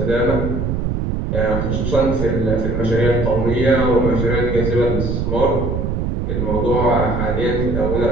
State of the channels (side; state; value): right; noise; rumble, 1 dB below the sound